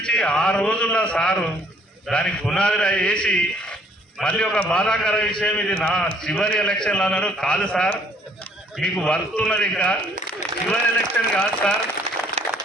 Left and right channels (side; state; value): both; normal; correlation 0.61